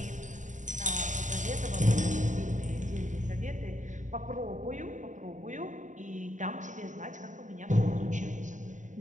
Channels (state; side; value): late; left; 0.36 ms